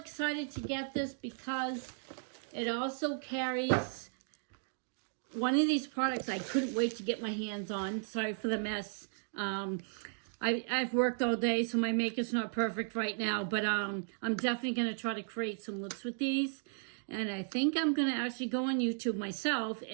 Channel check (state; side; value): silent; left; digital silence